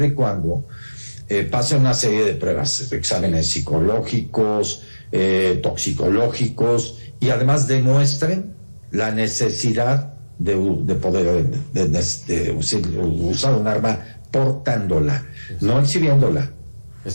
y cuando pasen una serie de pruebas, exámenes psicológicos, toxicológicos, y además demuestren la necesidad de poder usar un arma portándola, no exhibiéndola.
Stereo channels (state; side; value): inverted; both; correlation -1.00